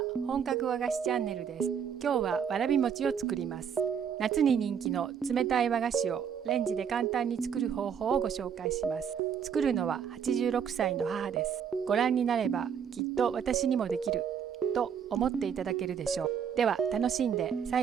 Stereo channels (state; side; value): quieter; left; 7.6 dB